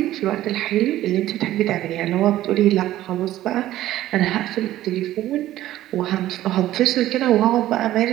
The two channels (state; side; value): quieter; left; 14.2 dB